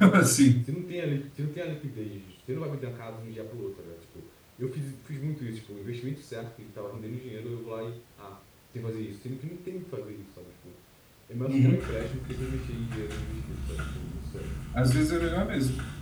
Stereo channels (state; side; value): identical; both; correlation 1.00